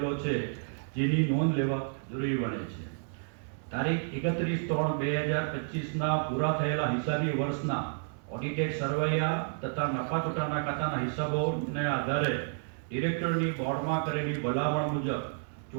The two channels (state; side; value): silent; left; 57 dB below the other